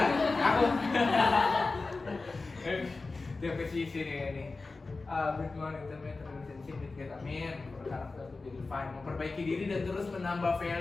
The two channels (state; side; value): quieter; right; 3.7 dB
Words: Aku JPCC nih ini. Build more intimate relationship with God. Amin. For character to be refined. Memperbaiki diri dan terus menambah